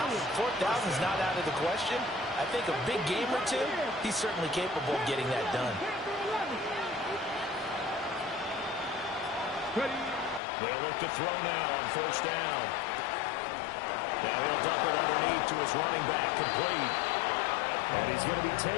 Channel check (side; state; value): right; drops out; at 10.4 s